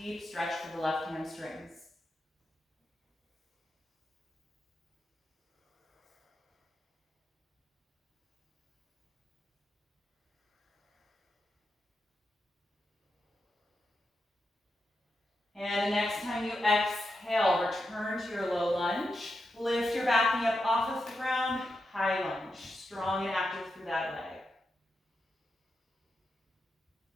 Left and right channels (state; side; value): normal; both; correlation 0.87